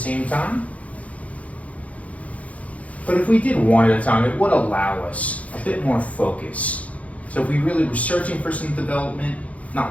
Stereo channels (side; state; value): right; late; 0.067 ms